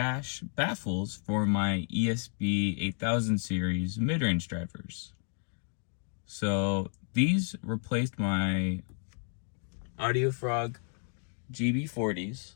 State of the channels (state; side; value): silent; right; 57 dB below the other